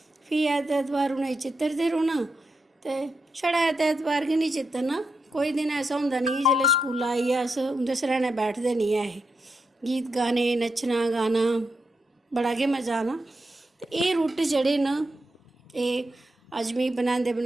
फ्ही ऐतवार उ'नेंगी चित्तरदे रौह्ना ते छड़ा ऐतवार गै निं चित्तरना, कोई दिन ऐसा होंदा निं जेल्लै स्कूला आइयै अस उं'दे सरैह्ने बैठदे निं ऐ हे। गीत गाने नच्चना गाना बड़ा गै मजा आना। ते एह् रुट्ट जेह्ड़े न एह् अज्ज मिगी बनांदे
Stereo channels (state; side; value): normal; both; correlation 0.85